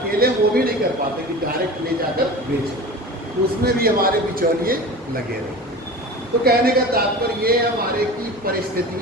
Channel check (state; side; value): normal; both; correlation 0.34